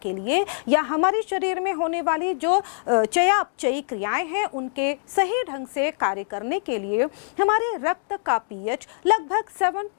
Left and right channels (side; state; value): right; silent; digital silence